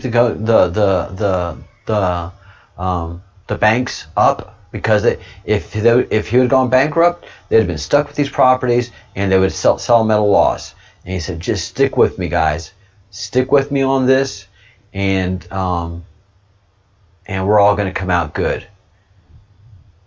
the banks up, because if he had gone bankrupt, they'd have been stuck with these properties and they would sell them at a loss. And he said, just stick with me, guys, stick with me on this, and we're all going to come out good.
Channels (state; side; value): identical; both; correlation 1.00